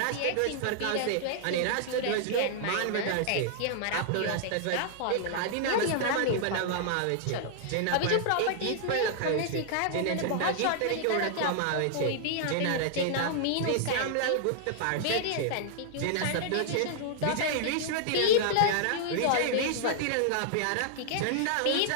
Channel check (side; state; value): both; different; correlation -0.01